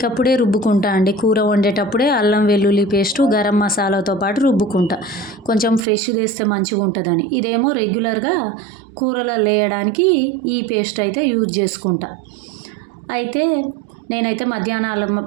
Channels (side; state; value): left; drops out; at 5.8 s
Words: రుబ్బుకుంటా అండి. కూర వండేటప్పుడే అల్లం వెల్లుల్లి పేస్టు గరం మసాలాతో పాటు రుబ్బుకుంటా, కొంచెం ఫ్రెష్ చేస్తే మంచిగా ఉంటుందని. ఇదేమో రెగ్యులర్గా కూరలో వేయడానికి ఈ పేస్ట్ అయితే యూజ్ చేసుకుంటా. అయితే నేనైతే మధ్యాహ్నాలు